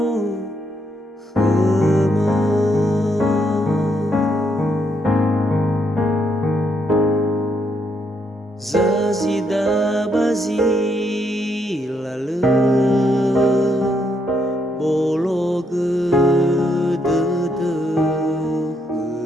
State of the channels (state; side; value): normal; both; correlation 0.75